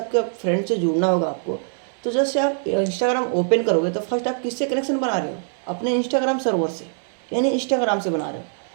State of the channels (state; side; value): silent; left; digital silence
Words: फ्रेंड से जुड़ना होगा आपको, तो जैसे आप इंस्टाग्राम ओपन करोगे तो फर्स्ट आप किससे कनेक्शन बना रहे हो, अपने इंस्टाग्राम सर्वर से, यानी इंस्टाग्राम से बना रहे हो।